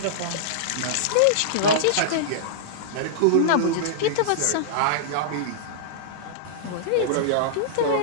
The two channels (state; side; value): different; both; correlation -0.02